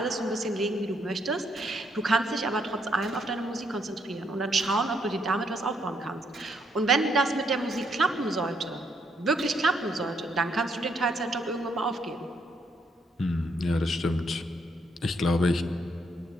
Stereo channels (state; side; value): normal; both; correlation 0.73